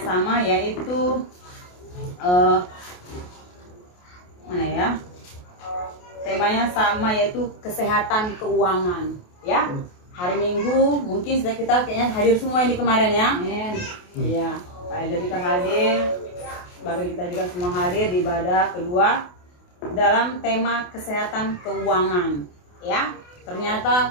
yaitu mana ya? Temanya sama, yaitu kesehatan keuangan. Ya, hari Minggu mungkin sudah kita kayaknya hadir semua ini kemarin ya. Iya, Pak Elder kita hadir, Bapak kita juga semua hadir di ibadah kedua dalam tema kesehatan keuangan. Ya,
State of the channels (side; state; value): right; late; 28 ms